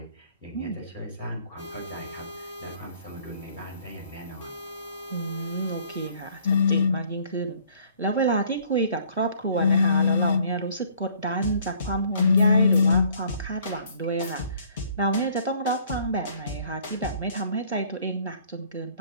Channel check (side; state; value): both; inverted; correlation -0.58